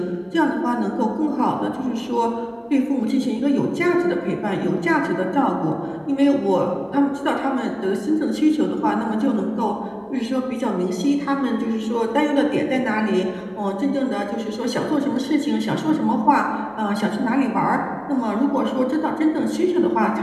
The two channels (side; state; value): both; identical; correlation 1.00